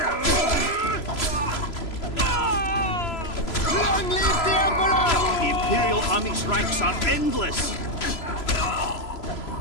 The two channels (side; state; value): right; late; 3.0 ms